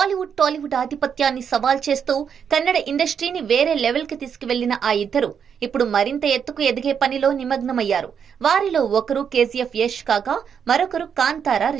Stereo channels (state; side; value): quieter; left; 7.4 dB